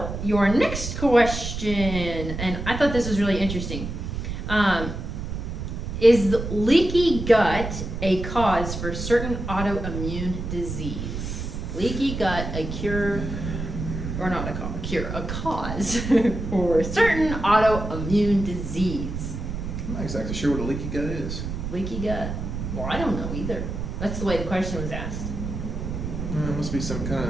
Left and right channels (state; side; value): noise; right; rumble, 5 dB below the sound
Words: your next question, and I thought this was really interesting. Is leaky gut a cause for certain autoimmune disease? Leaky gut, a cure, or not a cure, a cause for certain autoimmune disease? I'm not exactly sure what a leaky gut is. Leaky gut? Well, I don't know either. That's the way the question was asked. It must be some kind